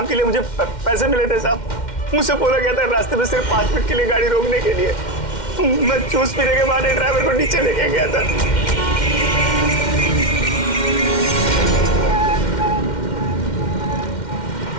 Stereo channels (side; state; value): right; late; 2.1 ms